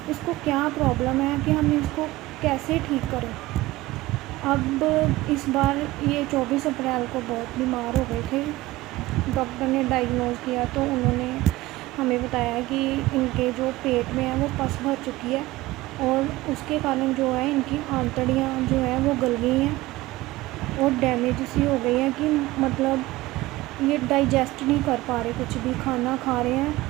इसको क्या प्रॉब्लम है कि हम इसको कैसे ठीक करें। अब इस बार ये 24 अप्रैल को बहुत बीमार हो गए थे। डॉक्टर ने डायग्नोज़ किया तो उन्होंने हमें बताया कि इनके जो पेट में है वो पस भर चुकी है और उसके कारण जो है इनकी आंतड़ियाँ जो है वो गल गई हैं और डैमेज सी हो गई हैं कि मतलब ये डाइजेस्ट नहीं कर पा रहे। कुछ भी खाना खा रहे हैं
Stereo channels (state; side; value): quieter; left; 18.2 dB